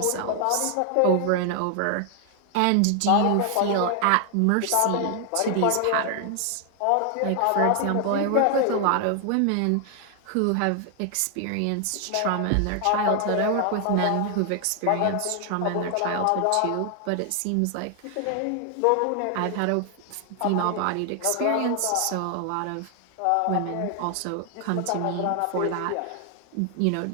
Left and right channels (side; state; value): both; different; correlation 0.00